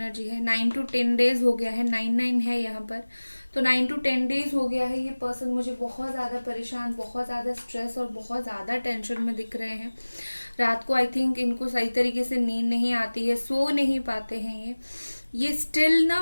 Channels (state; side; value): inverted; both; correlation -1.00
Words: है, 9 to 10 days हो गया है, 9 है यहाँ पर, तो 9 to 10 days हो गया है। ये पर्सन मुझे बहुत ज्यादा परेशान, बहुत ज्यादा स्ट्रेस और बहुत ज्यादा टेंशन में दिख रहे हैं। रात को आई थिंक इनको सही तरीके से नींद नहीं आती है, सो नहीं पाते हैं ये स्टिल ना